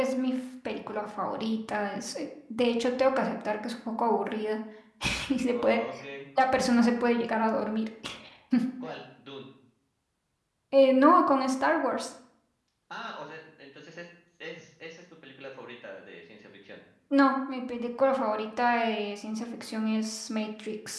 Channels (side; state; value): both; identical; correlation 1.00